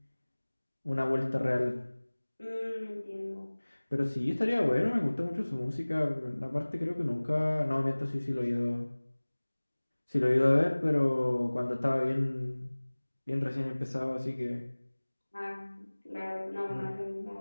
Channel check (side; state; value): both; inverted; correlation -1.00